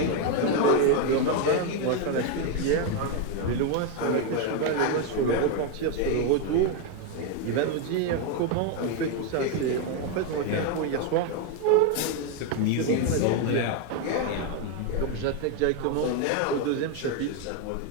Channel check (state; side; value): different; both; correlation 0.02